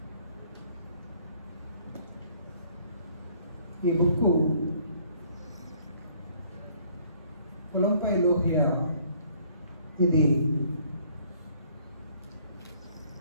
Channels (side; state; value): both; inverted; correlation -0.60